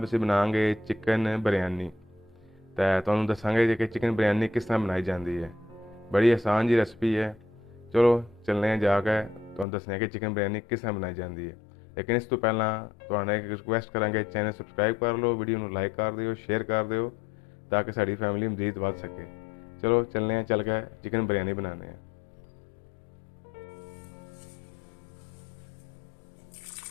ਅਸੀਂ ਬਣਾਵਾਂਗੇ ਚਿਕਨ ਬਿਰਿਆਨੀ। ਤੇ ਤੁਹਾਨੂੰ ਦੱਸਾਂਗੇ ਕਿ ਚਿਕਨ ਬਿਰਿਆਨੀ ਕਿਸ ਤਰ੍ਹਾਂ ਬਣਾਈ ਜਾਂਦੀ ਹੈ। ਬੜੀ ਆਸਾਨ ਜੀ ਰੈਸਪੀ ਹੈ। ਚਲੋ ਚੱਲਦੇ ਹਾਂ ਜਾ ਕੇ ਤੁਹਾਨੂੰ ਦੱਸਦੇ ਹਾਂ ਕਿ ਚਿਕਨ ਬਿਰਿਆਨੀ ਕਿਸ ਤਰ੍ਹਾਂ ਬਣਾਈ ਜਾਂਦੀ ਹੈ। ਲੇਕਿਨ ਇਸ ਤੋਂ ਪਹਿਲਾਂ ਤੁਹਾਨੂੰ ਇੱਕ ਰਿਕੁਐਸਟ ਕਰਾਂਗੇ, ਚੈਨਲ ਸਬਸਕ੍ਰਾਈਬ ਕਰ ਲਓ, ਵੀਡੀਓ ਨੂੰ ਲਾਈਕ ਕਰ ਦਿਓ, ਸ਼ੇਅਰ ਕਰ ਦਿਓ ਤਾਂ ਕਿ ਸਾਡੀ ਫੈਮਿਲੀ ਮਜ਼ੀਦ ਵੱਧ ਸਕੇ। ਚਲੋ ਚੱਲਦੇ ਹਾਂ, ਚੱਲ ਕੇ ਚਿਕਨ ਬਿਰਿਆਨੀ ਬਣਾਉਂਦੇ ਹਾਂ।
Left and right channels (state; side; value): drops out; right; at 9.7 s